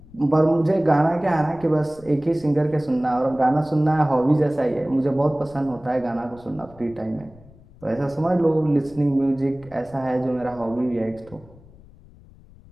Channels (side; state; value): left; noise; rumble, 23 dB below the sound